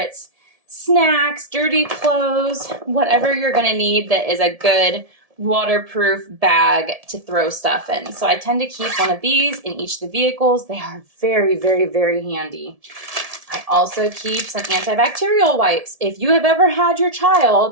snacks, dirty clothes, whatever you're going to need that is a good waterproof bag to throw stuff in. So I tend to keep one of these in each of the vehicles. They are very, very, very handy. I also keep some antibacterial wipes. If you have ever had your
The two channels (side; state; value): left; late; 1.7 ms